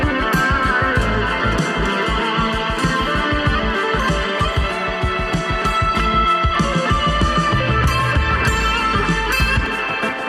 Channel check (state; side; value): identical; both; correlation 1.00